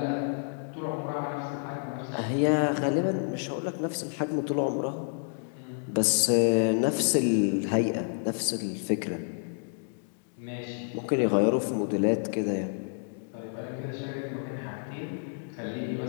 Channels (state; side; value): silent; right; digital silence